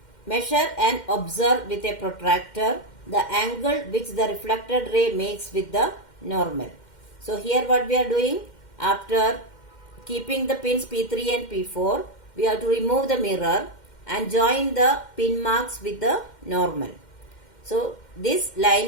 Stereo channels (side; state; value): right; late; 2.1 ms